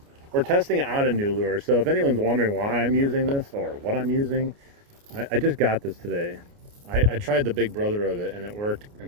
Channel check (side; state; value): left; late; 29 ms